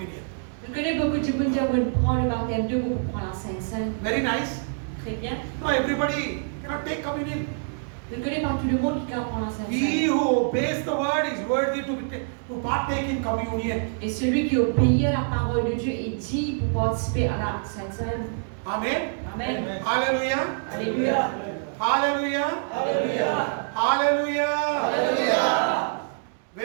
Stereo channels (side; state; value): left; silent; digital silence